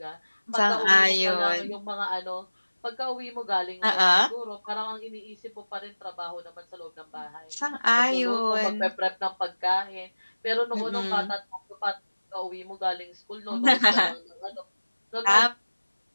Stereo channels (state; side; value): inverted; both; correlation -1.00